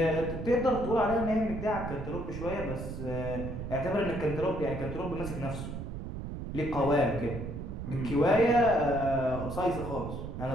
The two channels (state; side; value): noise; right; rumble, 7 dB below the sound